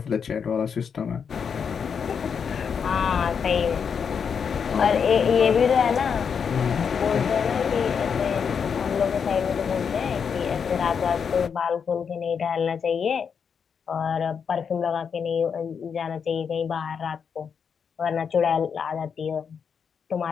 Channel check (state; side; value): quieter; right; 6.7 dB